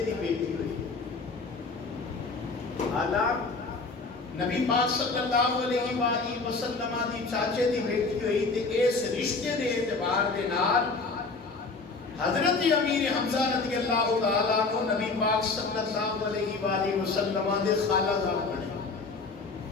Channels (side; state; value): right; quieter; 4.0 dB